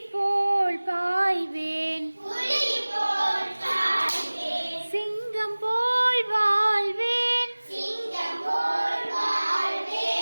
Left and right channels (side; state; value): both; inverted; correlation -1.00